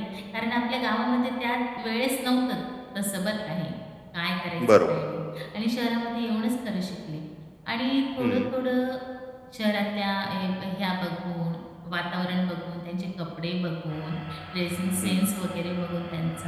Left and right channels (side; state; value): both; identical; correlation 1.00